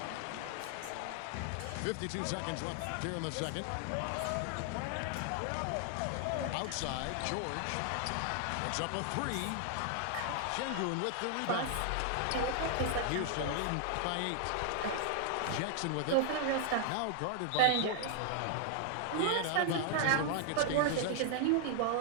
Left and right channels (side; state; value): both; different; correlation 0.00